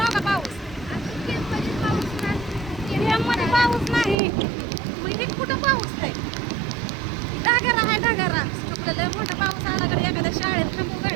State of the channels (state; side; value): drops out; left; at 4.2 s